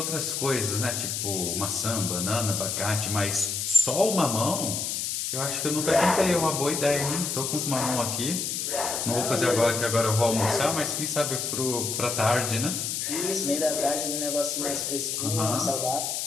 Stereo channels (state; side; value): noise; left; hiss, 2 dB below the sound